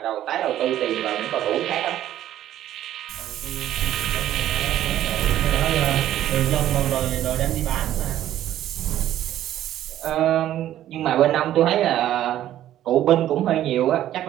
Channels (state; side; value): quieter; left; 12.4 dB